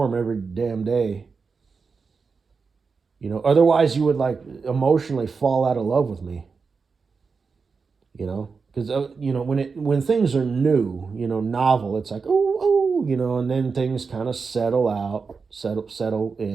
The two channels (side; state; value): left; quieter; 5.0 dB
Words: every damn day. Otherwise you would emotionally fall out of love with me. Because, when things are new, novel, it's like, oh, and then things kind of settle out, settle